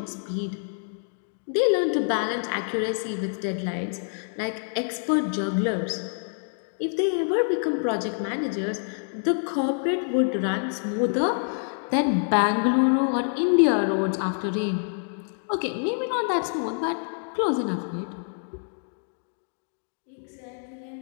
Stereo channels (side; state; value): right; silent; 60 dB below the other